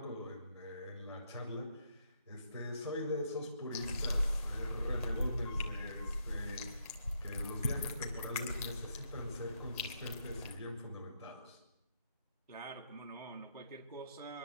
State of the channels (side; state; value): both; inverted; correlation -0.76